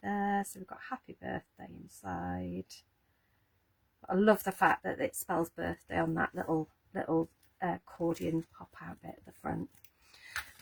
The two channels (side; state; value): both; identical; correlation 1.00